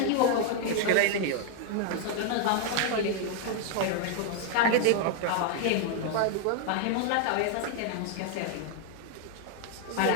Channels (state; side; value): different; both; correlation 0.00